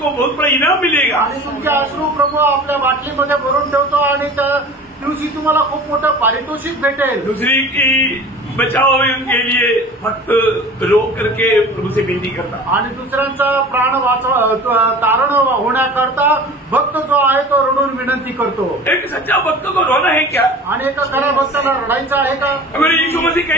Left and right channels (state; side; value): normal; both; correlation 0.40